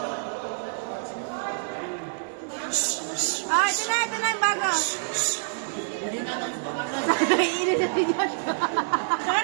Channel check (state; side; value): silent; left; digital silence